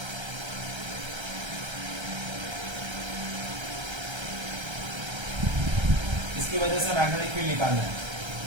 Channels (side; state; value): left; late; 1.3 ms